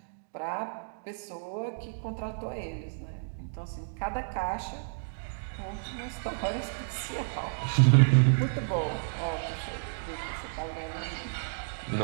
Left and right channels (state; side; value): silent; left; digital silence